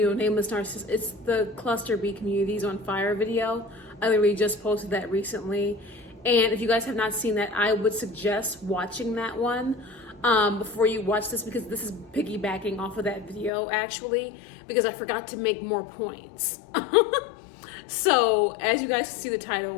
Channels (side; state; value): right; drops out; at 13.5 s